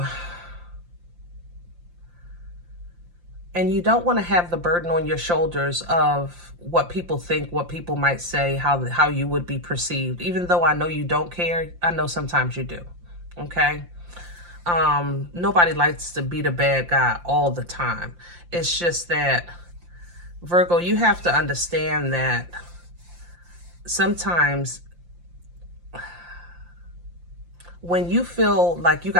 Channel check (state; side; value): late; left; 5.7 ms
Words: And you don't want to have the burden on your shoulders of what people think, what people might say, how you would be perceived. Even though I know you don't care, I know sometimes you do. Okay? Nobody likes to be the bad guy all the time. It's just that, Virgo, you have to understand that sometimes when you feel like you